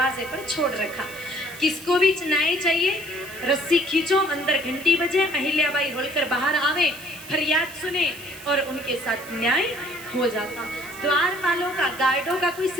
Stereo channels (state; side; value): noise; right; hiss, 17 dB below the sound